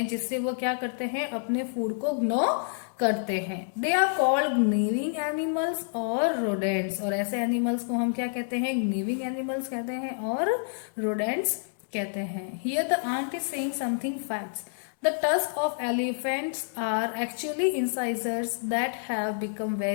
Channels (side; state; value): right; silent; digital silence